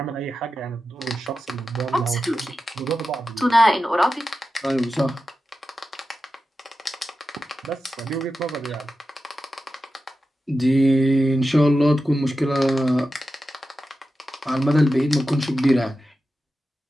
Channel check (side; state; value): both; normal; correlation 0.92